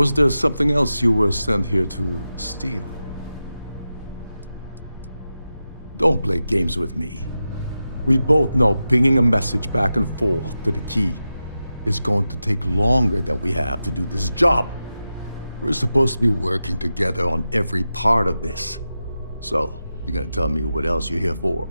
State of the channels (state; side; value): inverted; both; correlation -0.92